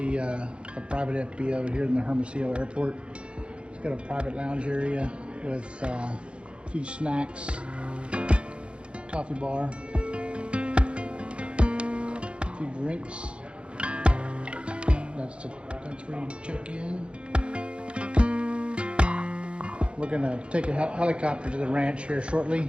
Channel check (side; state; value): left; late; 0.058 ms